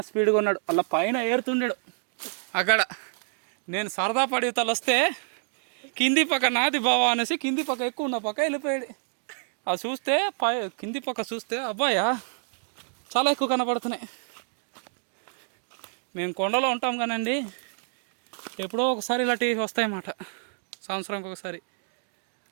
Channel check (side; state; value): left; silent; 57 dB below the other